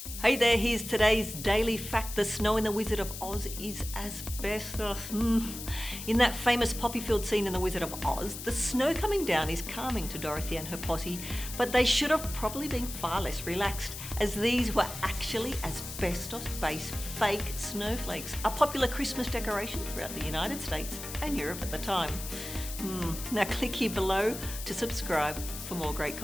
Hey there, here's today's daily fact. The snow in The Wizard of Oz is asbestos. In that famous poppy field scene in The Wizard of Oz, the snow coming down is calming to Dorothy and her posse, but they should have probably been far less relaxed, as these were actually asbestos-based fake snowflakes, a popular Christmas decoration throughout the United States and Europe at the time. Now click here below to subscribe for more great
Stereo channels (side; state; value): left; noise; hiss, 9 dB below the sound